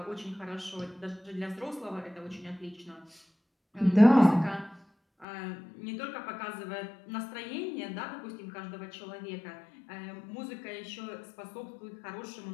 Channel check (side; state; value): right; drops out; at 5.2 s